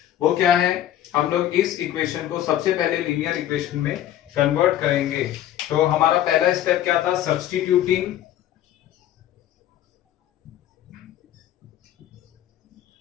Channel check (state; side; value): quieter; right; 12.2 dB